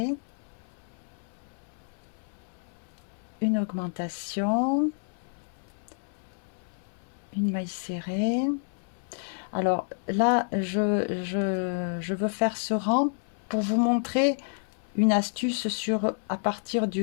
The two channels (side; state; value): right; silent; 58 dB below the other